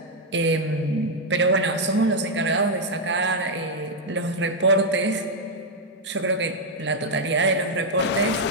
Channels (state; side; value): normal; both; correlation -0.01